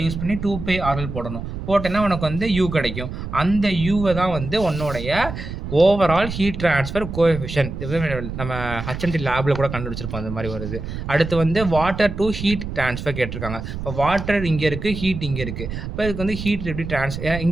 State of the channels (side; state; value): right; noise; rumble, 7 dB below the sound